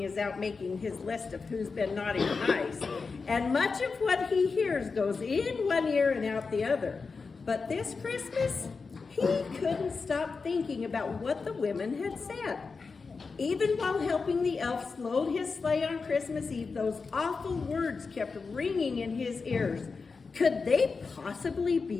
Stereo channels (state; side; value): quieter; right; 4.6 dB